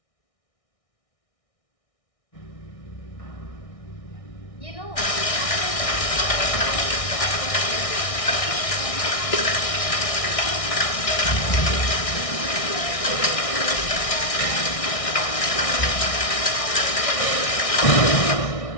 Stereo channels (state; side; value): late; right; 1.6 ms